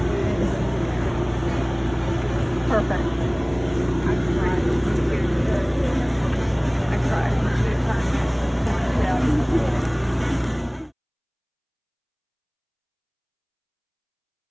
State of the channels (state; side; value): identical; both; correlation 1.00